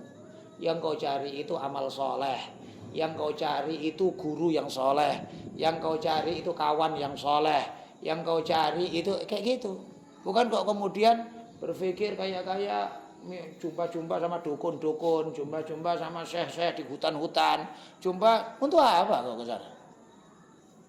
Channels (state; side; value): identical; both; correlation 1.00